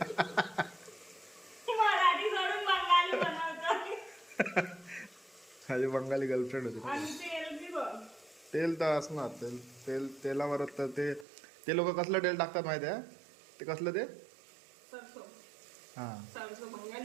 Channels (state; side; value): drops out; left; at 11.2 s